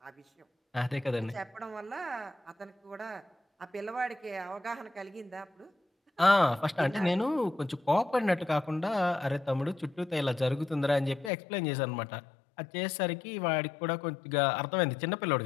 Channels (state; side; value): drops out; right; at 11.3 s